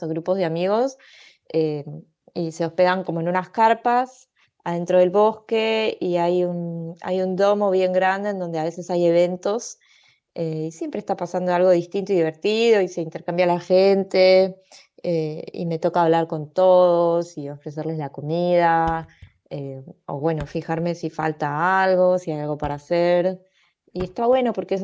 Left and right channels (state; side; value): identical; both; correlation 1.00